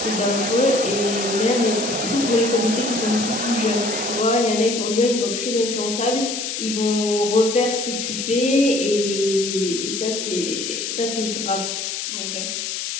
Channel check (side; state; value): left; noise; hiss, 4 dB below the sound